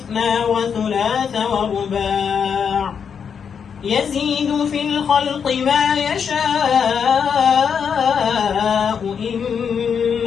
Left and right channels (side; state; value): right; quieter; 7.0 dB